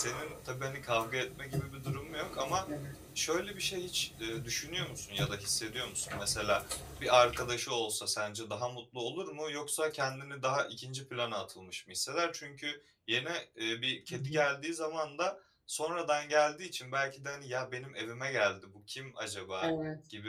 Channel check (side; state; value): both; identical; correlation 1.00